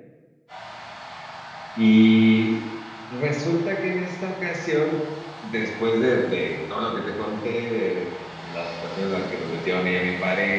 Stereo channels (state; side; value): identical; both; correlation 1.00